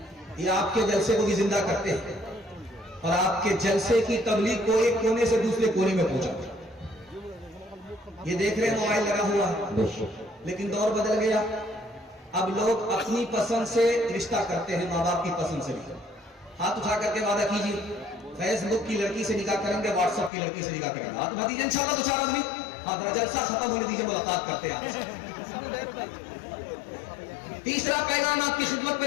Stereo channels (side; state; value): right; drops out; at 20.3 s